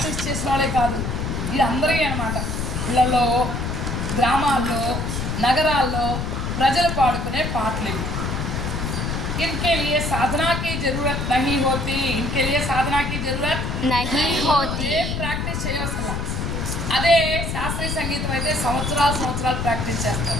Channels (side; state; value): left; noise; rumble, 2 dB below the sound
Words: చేసిన వాళ్ళే కాదు, ఇది అందరికీ అన్నమాట। ఇళ్ళలో, గ్రామాల్లో, నగరాల్లో ప్రజలు పాడుకునే పాటలు ఇవి। इनके लिए साधना की जरूरत नहीं होती। इनके लिए साधना की जरूरत नहीं होती। ప్రాక్టీస్ చేయవసరం। అదే శాస్త్రీయ సంగీతం అయితే సంవత్సరాలు ప్రాక్టీస్